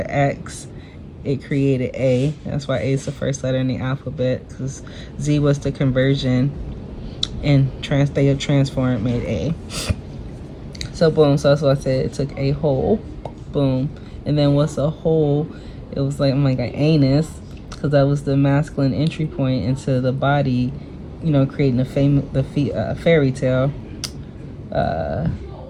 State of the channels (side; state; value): both; identical; correlation 1.00